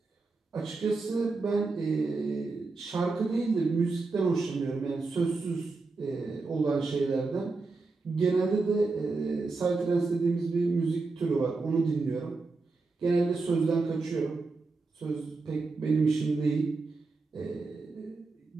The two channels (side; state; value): left; quieter; 3.8 dB